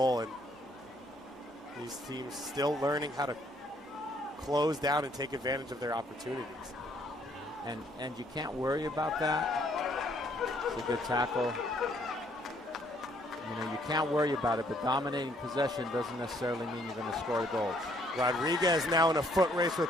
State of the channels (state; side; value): normal; both; correlation 0.66